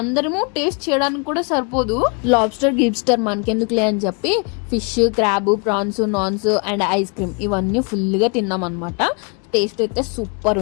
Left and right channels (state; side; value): quieter; right; 34.2 dB